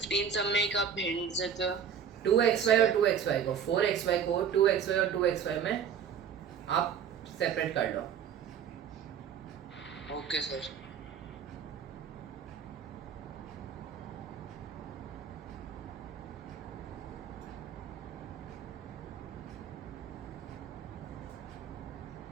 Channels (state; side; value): quieter; left; 7.8 dB